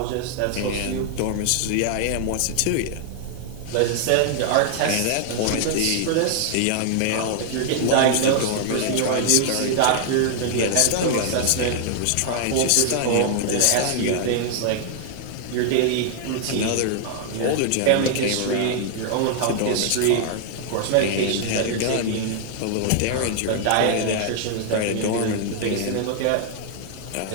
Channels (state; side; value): different; both; correlation 0.00